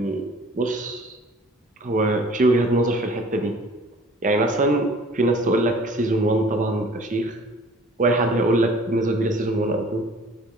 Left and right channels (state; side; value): normal; both; correlation 0.50